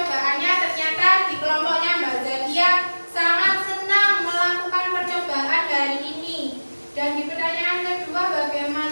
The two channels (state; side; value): inverted; both; correlation -1.00